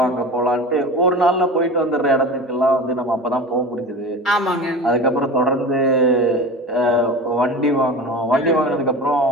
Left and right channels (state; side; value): normal; both; correlation 0.32